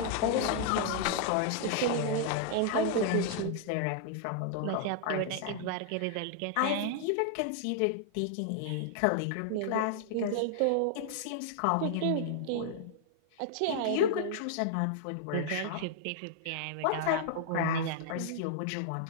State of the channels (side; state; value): both; different; correlation -0.01